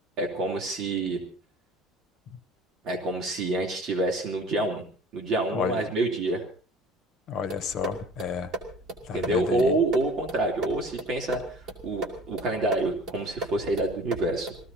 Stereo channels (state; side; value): normal; both; correlation 0.45